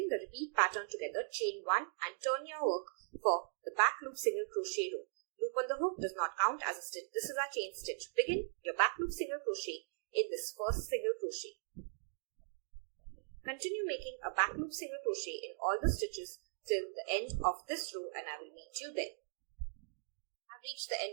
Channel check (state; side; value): silent; left; digital silence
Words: the repeat pattern together. Chain 1 and turn your work for the back loop single crochet row. Loop on the hook does not count as a stitch. This is our chain stitch. Begin your back loop single crochet in this first single crochet. Continue making a back loop single crochet in all the stitches till the end of this row and I will meet you there. I've reached the